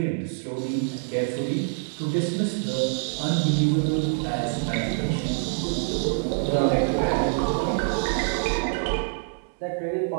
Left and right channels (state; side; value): silent; left; digital silence